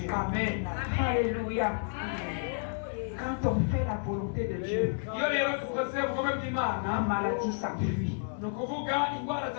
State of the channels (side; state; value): right; silent; digital silence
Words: Amen. Alléluia. Quand on fait la volonté de Dieu, iyo rero dukoze ubugome la bw'Imana maladie s'enfuit, ni ukuvuga indwara les